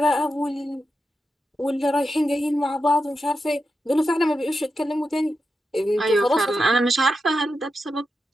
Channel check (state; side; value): normal; both; correlation 0.89